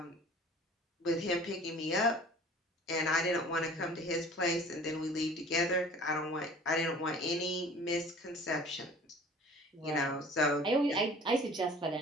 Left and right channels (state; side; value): normal; both; correlation 0.47